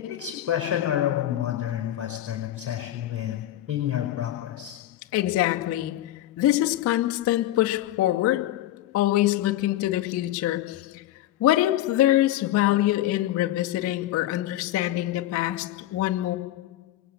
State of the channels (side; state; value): right; quieter; 13.8 dB